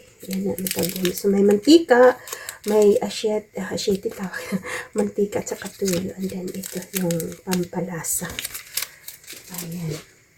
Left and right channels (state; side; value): identical; both; correlation 1.00